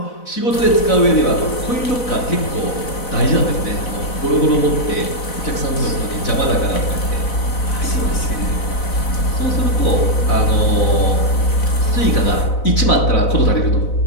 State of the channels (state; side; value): late; right; 4.0 ms